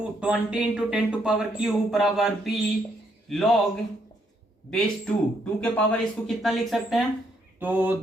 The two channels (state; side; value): normal; both; correlation 0.73